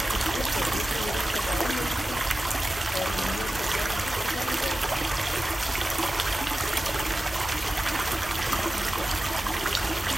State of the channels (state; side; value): normal; both; correlation 0.95